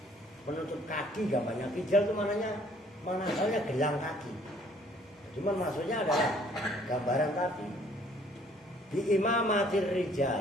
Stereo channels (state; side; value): normal; both; correlation 0.60